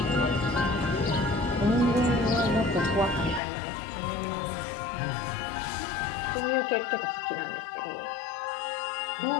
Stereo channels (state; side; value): drops out; right; at 3.4 s